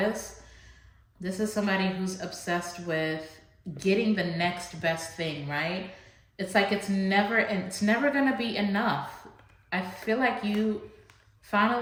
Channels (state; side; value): identical; both; correlation 1.00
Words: This is somebody who's obsessed with getting the next best thing, right? It's like it's never gonna be enough. I feel like you